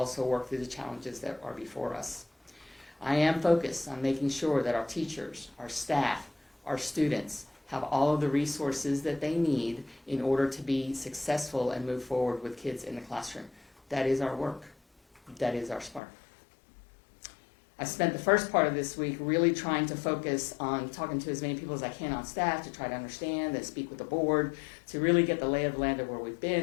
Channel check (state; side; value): drops out; right; at 16.0 s